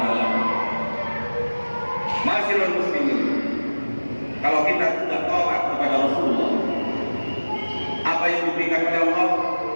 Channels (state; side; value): inverted; both; correlation -1.00